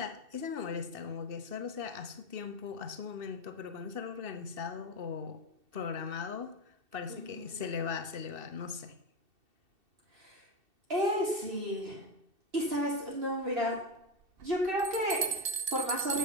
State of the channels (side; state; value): left; late; 2.7 ms